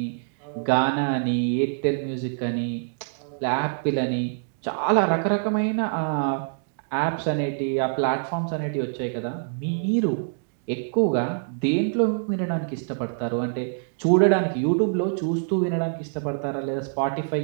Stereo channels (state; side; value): silent; left; digital silence